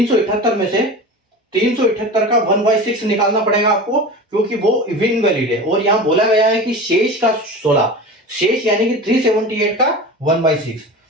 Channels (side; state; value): both; normal; correlation 0.32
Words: में से 378 का 1/6 निकालना पड़ेगा आपको, क्योंकि वो इनवैलिड है, और यहां बोला गया है कि शेष का 16, शेष यानी कि 378 का 1/6,